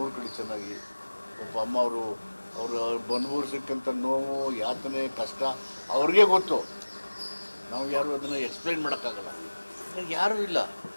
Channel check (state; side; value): inverted; both; correlation -1.00